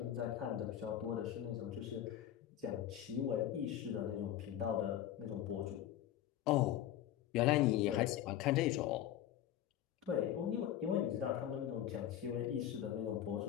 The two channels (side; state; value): right; quieter; 11.5 dB